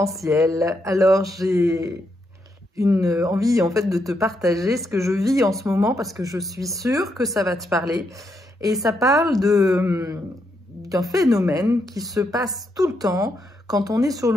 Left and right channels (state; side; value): normal; both; correlation 0.79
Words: Alors j'ai une envie en fait de te partager ce que je vis en ce moment parce que je suis sûre que ça va te parler. Et ça parle d'un phénomène qui se passe tout le temps quand on est sur